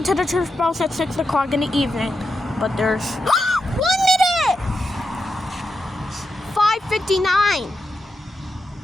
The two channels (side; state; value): both; normal; correlation 0.87